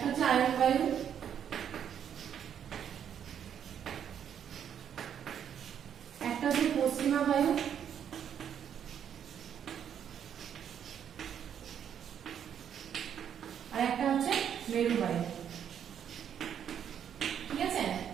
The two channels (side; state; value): left; quieter; 8.8 dB